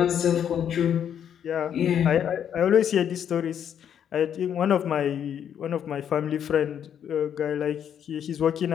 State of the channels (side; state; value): right; quieter; 9.0 dB